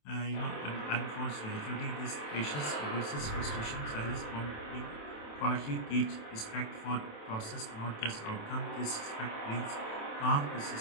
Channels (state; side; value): late; right; 27 ms